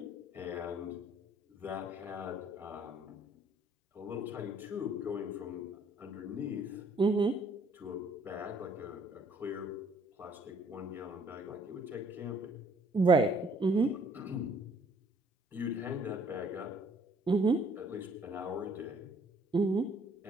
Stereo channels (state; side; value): normal; both; correlation 0.62